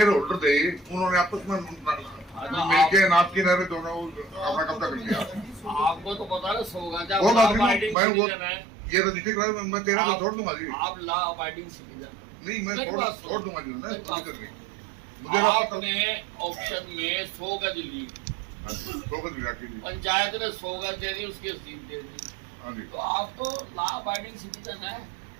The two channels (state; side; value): drops out; left; at 8.0 s